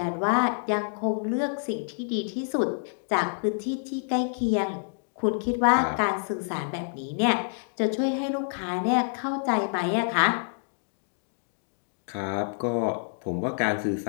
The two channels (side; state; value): right; silent; digital silence